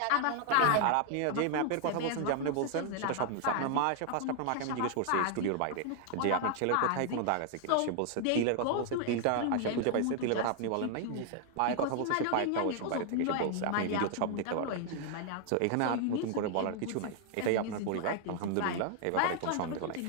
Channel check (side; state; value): both; different; correlation 0.00